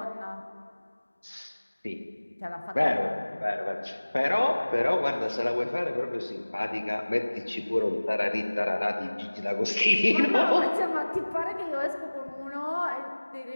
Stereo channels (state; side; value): inverted; both; correlation -1.00